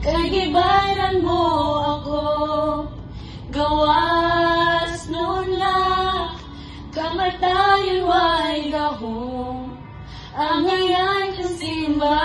kagibaran mo ako, gawas nun na, kamatayon way gahong, ang ngayon kong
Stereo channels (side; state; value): both; identical; correlation 1.00